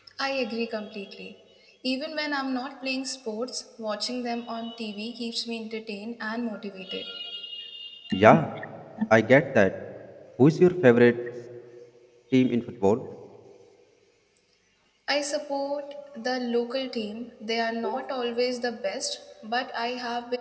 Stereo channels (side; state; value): both; identical; correlation 1.00